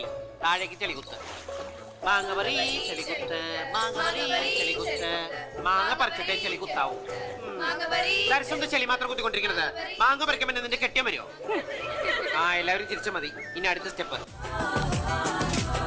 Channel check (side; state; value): both; identical; correlation 1.00